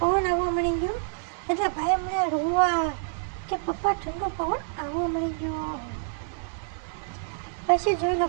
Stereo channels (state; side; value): silent; left; 59 dB below the other